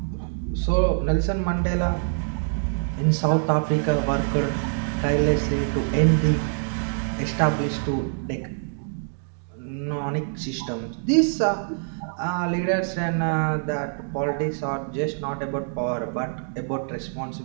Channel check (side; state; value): left; silent; digital silence